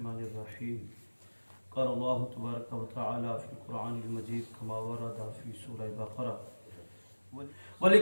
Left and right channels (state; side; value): inverted; both; correlation -1.00